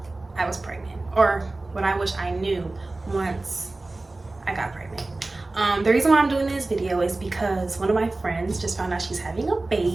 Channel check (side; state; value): left; quieter; 3.1 dB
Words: I was pregnant, or what I wish I knew once I got pregnant. The reason why I'm doing this video is because one of my friends just found out she's having a